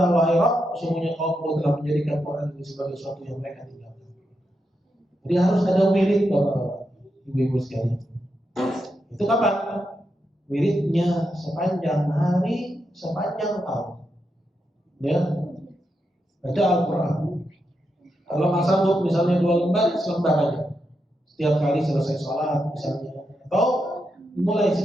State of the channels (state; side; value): normal; both; correlation 0.85